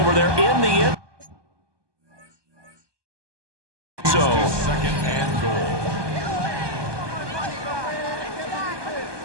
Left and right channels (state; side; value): late; left; 1.2 ms